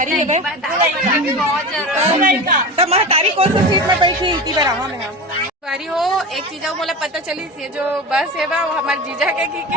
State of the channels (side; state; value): both; normal; correlation 0.28